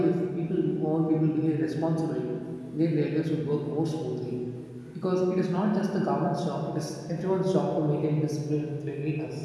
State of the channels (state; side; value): identical; both; correlation 1.00